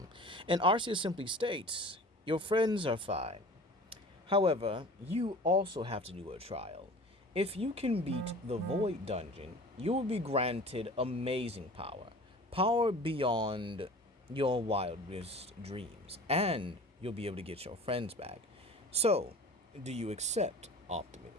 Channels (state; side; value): normal; both; correlation 0.41